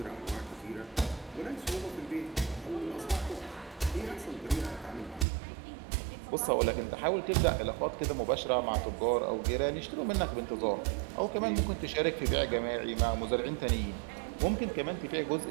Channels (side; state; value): left; drops out; at 5.2 s